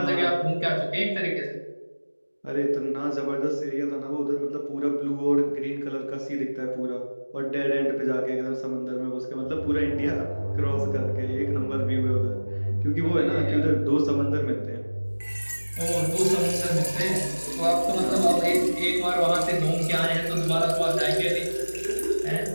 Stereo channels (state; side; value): inverted; both; correlation -1.00